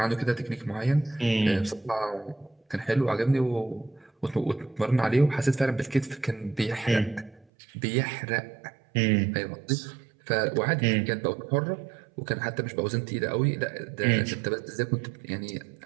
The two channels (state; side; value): drops out; left; at 7.5 s